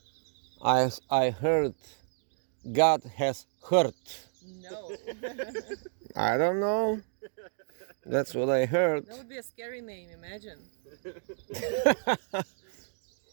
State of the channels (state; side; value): silent; left; digital silence